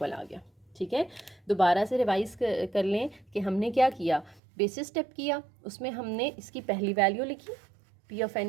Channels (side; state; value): left; drops out; at 4.4 s